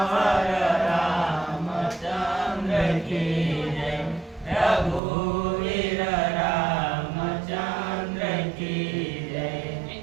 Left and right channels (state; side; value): drops out; left; at 5.0 s